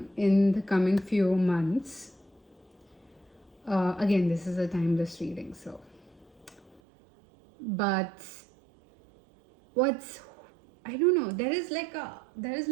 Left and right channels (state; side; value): drops out; left; at 6.8 s